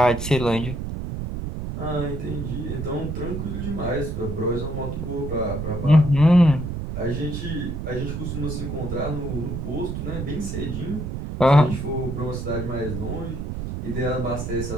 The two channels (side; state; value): right; noise; rumble, 5 dB below the sound